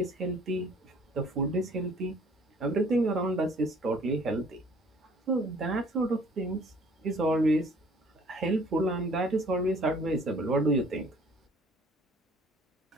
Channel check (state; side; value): normal; both; correlation 0.55